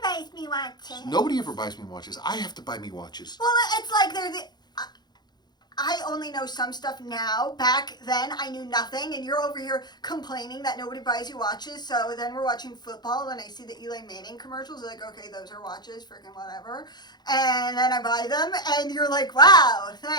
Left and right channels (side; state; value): right; late; 0.20 ms